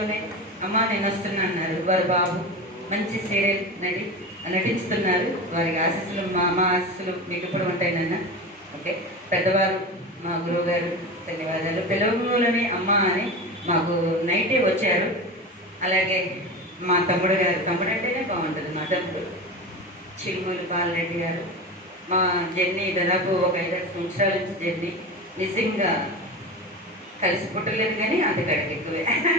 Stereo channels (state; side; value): normal; both; correlation 0.26